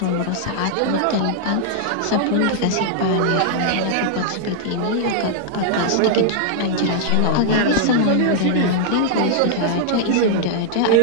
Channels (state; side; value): different; both; correlation -0.01